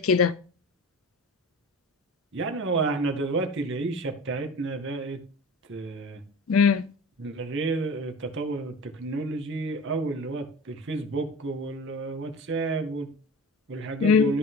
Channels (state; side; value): normal; both; correlation 0.35